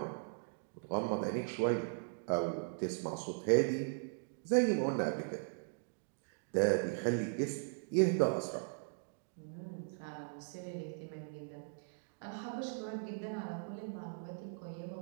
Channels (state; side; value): silent; left; digital silence